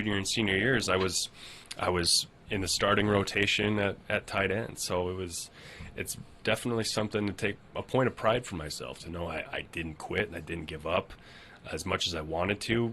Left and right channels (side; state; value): both; identical; correlation 1.00